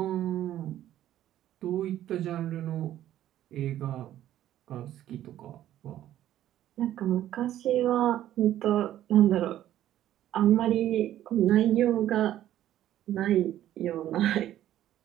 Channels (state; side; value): quieter; left; 12.5 dB